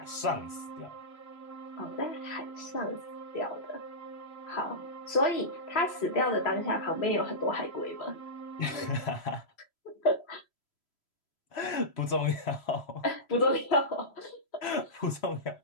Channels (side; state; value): right; late; 3.0 ms